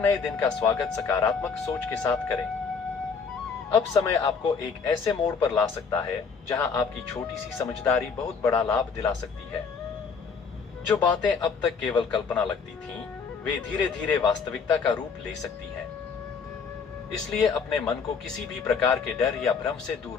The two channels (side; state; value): right; quieter; 5.6 dB